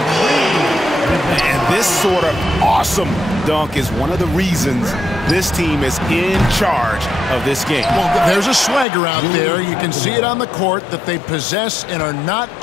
And this sort of awesome dunk is one of the reasons this team is in charge of this game. Well, there's a swagger out there. You can see it on the court that they possess and are not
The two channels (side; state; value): right; drops out; at 8.8 s